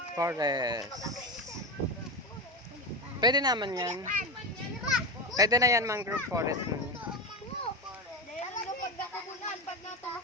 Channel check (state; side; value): normal; both; correlation 0.17